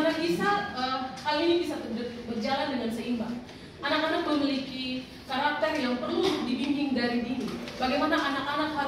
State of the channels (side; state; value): both; identical; correlation 1.00